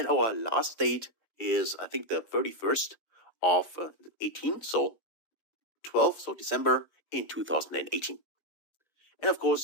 our last date is, I think, the 31st of 18. So 12th of December in 2018. And of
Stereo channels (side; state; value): right; late; 5.7 ms